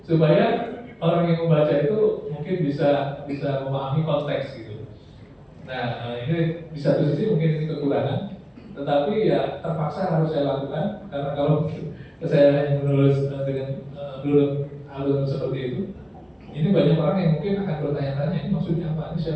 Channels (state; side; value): identical; both; correlation 1.00